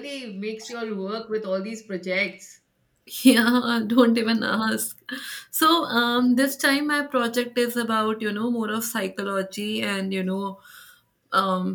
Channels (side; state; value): both; identical; correlation 1.00